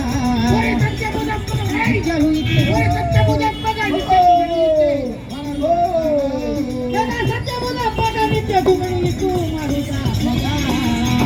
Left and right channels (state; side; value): identical; both; correlation 1.00